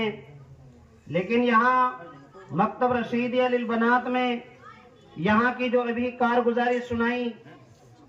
لیکن یہاں مکتب رشیدیہ للبنات میں یہاں کی جو ابھی کارگزاری سنائی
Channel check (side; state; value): both; identical; correlation 1.00